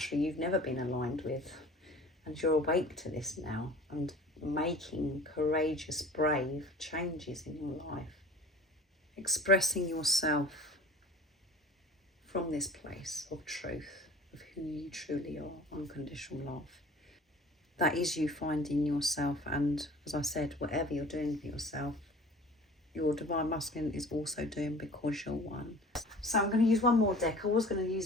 you've never been aligned with, and you're awake to this now and making courageous, brave changes in your life. Expressing yourself from this place of truth, of who you truly are, unconditional love. That is you finding yourself, and as I said, whatever you're doing for yourself, your divine masculine is also doing because you're one. So I'm going to use one more deck. I was going to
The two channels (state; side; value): normal; both; correlation 0.44